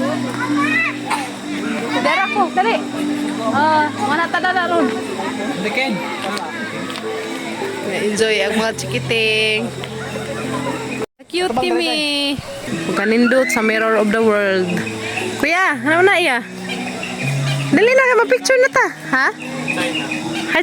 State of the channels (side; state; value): both; identical; correlation 1.00